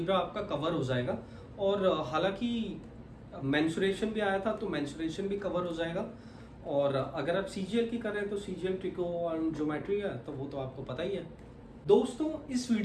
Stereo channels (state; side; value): identical; both; correlation 1.00